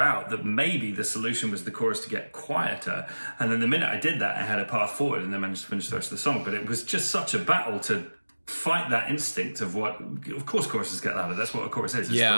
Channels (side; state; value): both; inverted; correlation -1.00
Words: out that maybe the solution was the chorus to get quieter. And then the minute I did that, I had a path forward and then managed to finish the rest of the song. But it was just such a battle to fight that instinct of course choruses get louder. That's what a chorus is. It's the